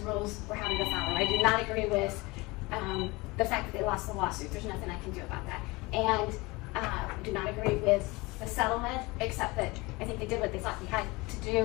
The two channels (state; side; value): quieter; right; 23.4 dB